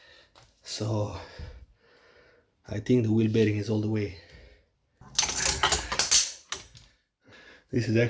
So I think the wheel bearing is all the way. This is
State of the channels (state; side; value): identical; both; correlation 1.00